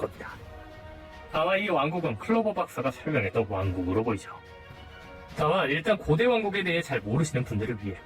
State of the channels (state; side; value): identical; both; correlation 1.00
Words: 아마 이 왕국은 클로버 박사가 설명했던 왕국으로 보이죠. 다만 일단 고대 왕국에 대해 잘 모르시는 분들을 위해